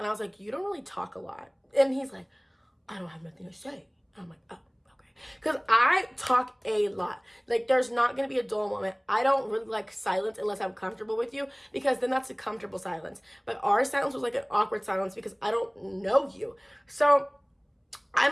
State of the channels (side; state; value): both; identical; correlation 1.00